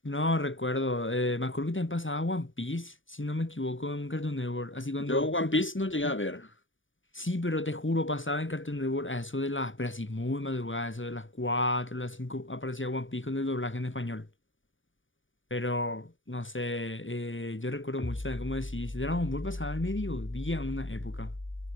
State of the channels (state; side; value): late; right; 0.57 ms